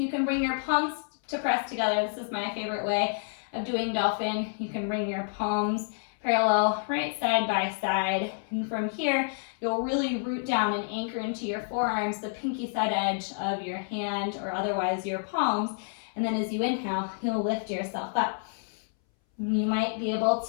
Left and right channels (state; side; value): silent; right; 59 dB below the other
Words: can bring your palms to press together. This is my favorite way of doing dolphin. You can bring your palms parallel, right side by side. And from here, you'll really root down and anchor into your forearms, the pinky side edge of your hand or otherwise your palms. And then as you inhale, you'll lift yourself up. You might be able